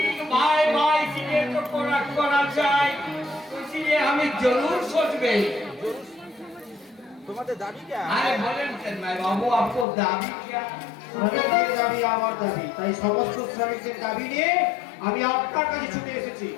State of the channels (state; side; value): drops out; right; at 9.9 s